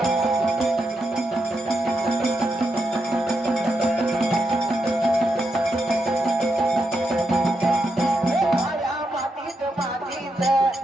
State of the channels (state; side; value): normal; both; correlation 0.83